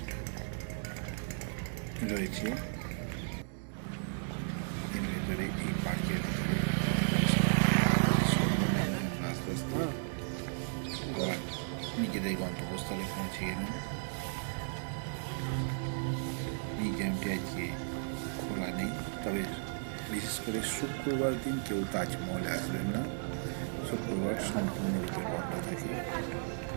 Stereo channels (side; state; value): left; silent; digital silence